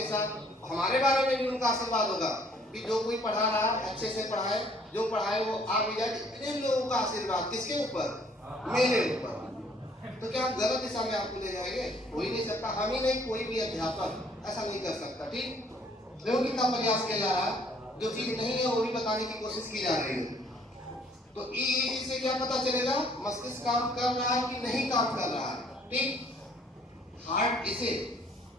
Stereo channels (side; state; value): both; normal; correlation 0.61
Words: साथ, हमारे बारे में भी उनका आशीर्वाद होगा कि जो कोई पढ़ा रहा है अच्छे से पढ़ाए, जो पढ़ाए वो आ भी जाए। इतने लोगों का आशीर्वाद किसके ऊपर, मेरे ऊपर। तो क्या गलत दिशा में आपको ले जाएंगे, हो ही नहीं सकता। हम ही नहीं, कोई भी अध्यापक ऐसा नहीं कर सकता। ठीक, देखो कितना प्रयास किया जा रहा है, जो चीज नहीं है वो भी बताने की कोशिश की जा रही है। तो ईईजी से क्या पता चलेगा, मस्तिष्क काम कर रहा है कि नहीं काम कर रहा है। ठीक, हार्ट इसे